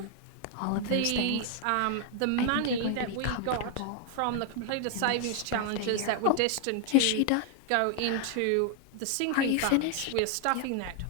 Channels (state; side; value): different; both; correlation 0.00